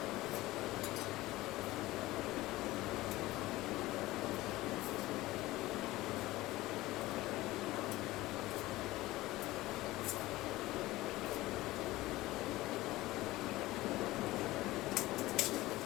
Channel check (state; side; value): quieter; right; 18.0 dB